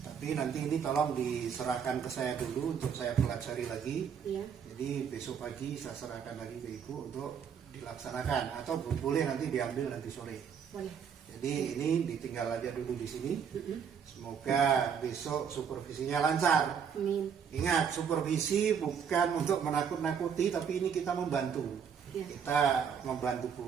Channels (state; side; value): quieter; left; 7.3 dB